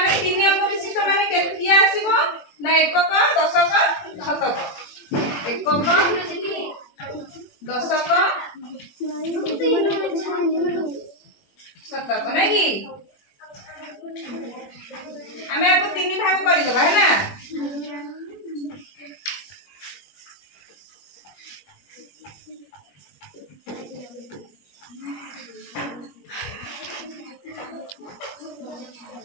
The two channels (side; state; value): right; late; 21 ms